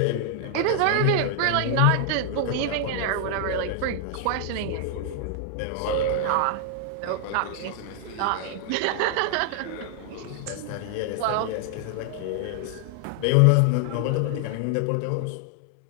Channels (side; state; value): both; different; correlation 0.00